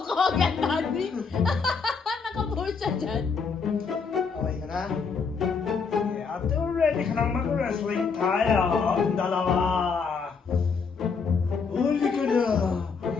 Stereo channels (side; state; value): right; quieter; 5.3 dB